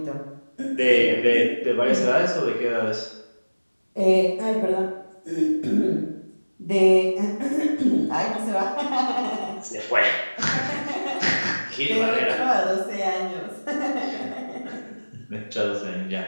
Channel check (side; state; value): both; inverted; correlation -1.00